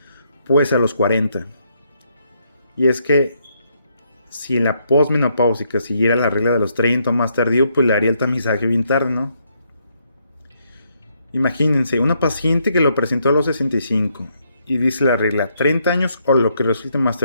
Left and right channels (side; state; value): both; inverted; correlation -0.74